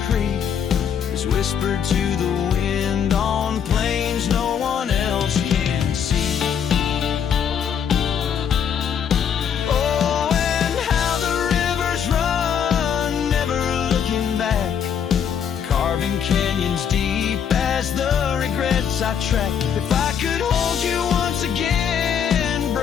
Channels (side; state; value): right; quieter; 8.0 dB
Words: creek is whispered to the wind on plains no one else can see. Oh, and how the rivers run, never looking back, carving canyons deep as the regrets I track. If I could hold you once again,